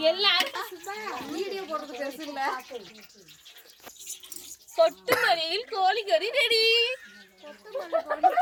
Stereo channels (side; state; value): both; identical; correlation 1.00